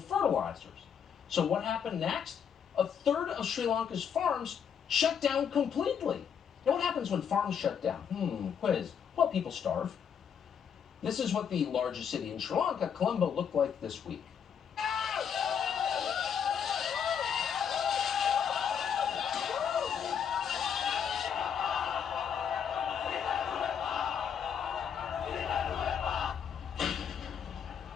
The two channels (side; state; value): right; quieter; 7.7 dB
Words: So what happened next? A third of Sri Lanka's farms shut down completely. Now, what happens when farms shut down? Quiz. Well, people starve. This is what the largest city in Sri Lanka, Colombo, looked like this week.